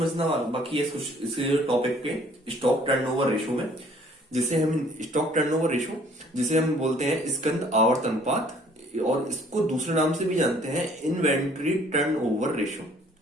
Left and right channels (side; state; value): both; normal; correlation 0.58